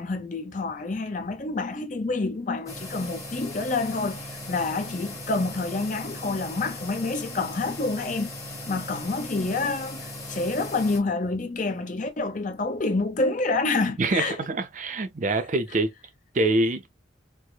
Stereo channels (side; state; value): both; normal; correlation 0.38